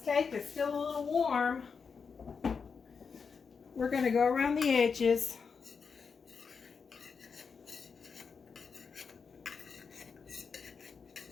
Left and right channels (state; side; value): quieter; right; 5.6 dB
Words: is still a little warm. We're going to go around the edges.